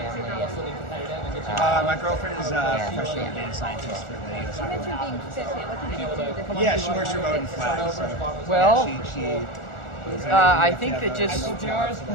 My girlfriend is a professional data scientist for the U.S. You mentioned being fit. What did you do? Yeah, she works remote in Flag. So, Well, yeah, she I think that just Change up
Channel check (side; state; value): right; late; 1.4 ms